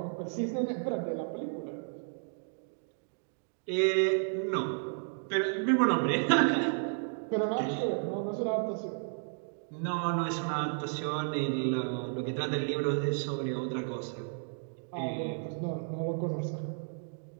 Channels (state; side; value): silent; left; digital silence